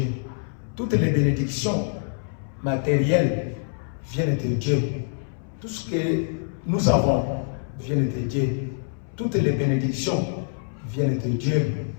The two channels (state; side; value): silent; right; 62 dB below the other